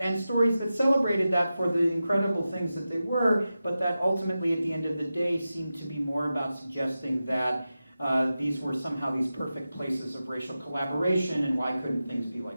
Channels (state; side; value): inverted; both; correlation -0.93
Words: stories that celebrated that for the incredible things that they were, but that ultimately at the end of the day seemed to be more about suggesting that these were somehow these perfect places of racial collaboration, and why couldn't things be